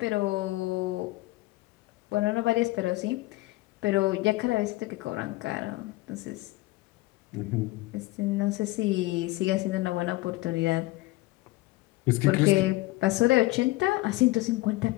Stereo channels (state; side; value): quieter; right; 19.8 dB